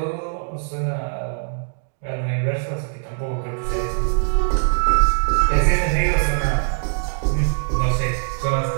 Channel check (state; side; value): silent; left; digital silence